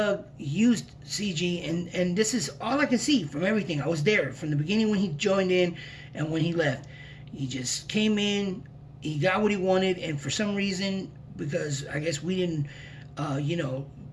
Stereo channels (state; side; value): identical; both; correlation 1.00